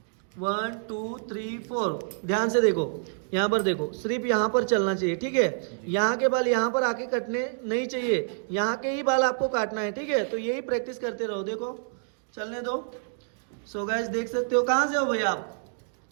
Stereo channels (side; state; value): left; silent; digital silence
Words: 1 2 3 4 ध्यान से देखो, यहाँ पर देखो, सिर्फ यहाँ पर चलना चाहिए, ठीक है। यहाँ के बाल यहाँ पर आके कटने नहीं चाहिए, यहाँ के ही बाल आपको काटना है, ठीक है। तो यही प्रैक्टिस करते रहो, देखो चलने दो। सो गाइस देख सकते हो, कहाँ से हो भैया आप?